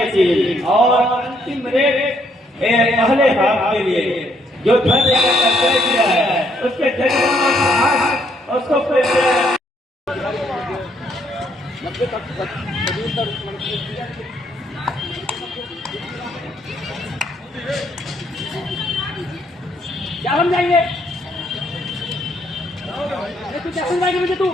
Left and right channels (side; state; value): both; normal; correlation 0.70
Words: टीम और अंतिम रेट पहले हाफ के लिए जो धरने का तय किया है उसके जरिए उसको क्या हम जाएंगे? तू क्या समझाएगा मुझे? तू